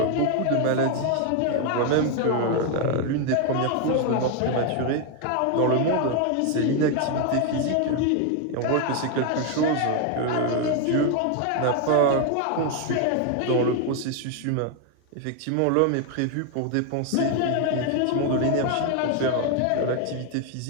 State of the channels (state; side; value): different; both; correlation 0.01